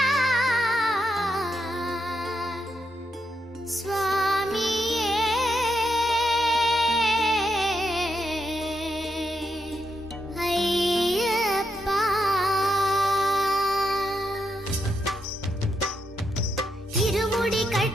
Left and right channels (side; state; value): both; normal; correlation 0.82